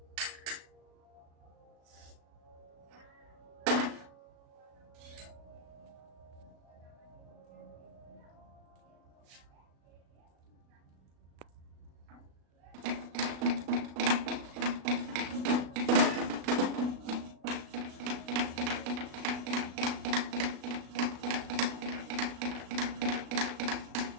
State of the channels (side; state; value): left; late; 36 ms